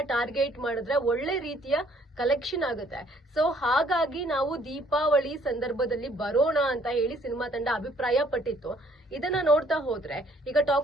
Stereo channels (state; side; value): normal; both; correlation 0.62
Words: ಟಾರ್ಗೆಟ್ ಮಾಡಿದ್ರೆ ಒಳ್ಳೆ ರೀತಿಯ ಕಲೆಕ್ಷನ್ ಆಗುತ್ತೆ. ಸೊ ಹಾಗಾಗಿ ನಾವು ದೀಪಾವಳಿ ಸಂದರ್ಭದಲ್ಲಿ ಬರೋಣ ಅಂತ ಹೇಳಿ ಸಿನಿಮಾ ತಂಡ ಅಭಿಪ್ರಾಯ ಪಟ್ಟಿತ್ತು. ಇದನ್ನ ನೋಡ್ತಾ ಹೋದ್ರೆ ಈಗ